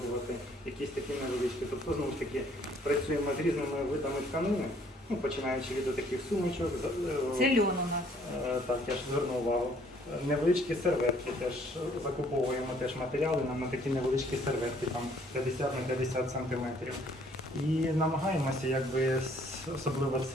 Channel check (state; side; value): normal; both; correlation 0.61